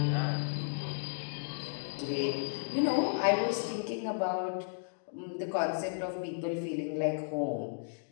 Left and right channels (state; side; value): silent; right; digital silence